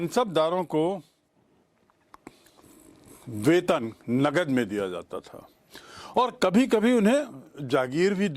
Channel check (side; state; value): both; identical; correlation 1.00